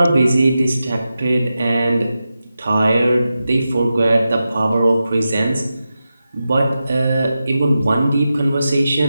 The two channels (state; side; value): inverted; both; correlation -0.91